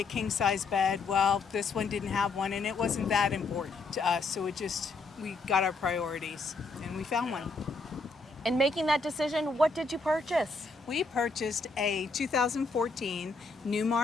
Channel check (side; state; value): right; quieter; 3.8 dB